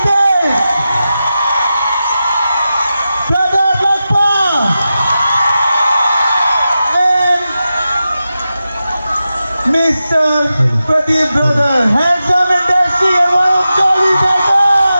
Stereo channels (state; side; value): inverted; both; correlation -0.92